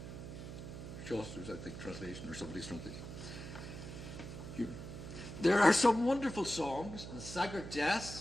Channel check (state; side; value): noise; right; hum, 9 dB below the sound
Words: Chaucer's, I think, translation, or somebody's translation. There are some wonderful songs, and Sagart